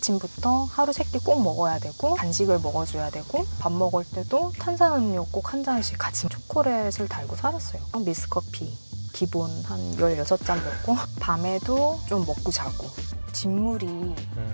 하루 3끼 꼭 먹어야 되고 간식을 먹어줘야 되고 밥 먹을 때도 탄산음료 꼭 한 잔씩 같이 초콜릿을 달고 살았어요. 미스커피 기본 한 16잔 먹고 밤에도 좀 먹고 자고 진물이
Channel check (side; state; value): both; inverted; correlation -1.00